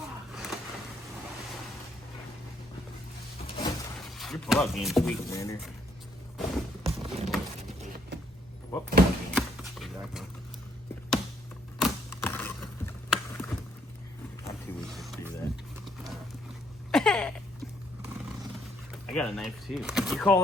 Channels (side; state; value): both; normal; correlation 0.69